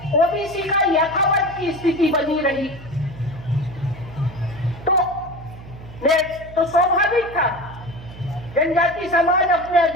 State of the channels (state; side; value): noise; right; hum, 16 dB below the sound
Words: ओबीसी का यथावत की स्थिति बनी रही। तो स्वाभाविक था जनजाति समाज अपने